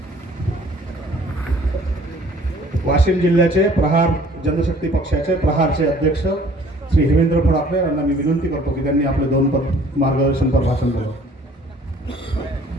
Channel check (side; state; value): both; normal; correlation 0.54